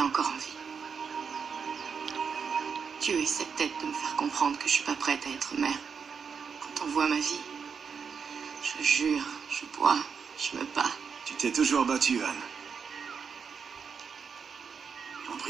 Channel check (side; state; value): left; quieter; 6.2 dB